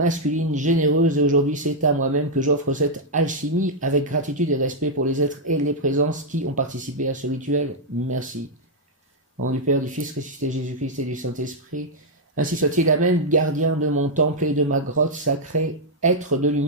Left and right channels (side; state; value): both; normal; correlation -0.03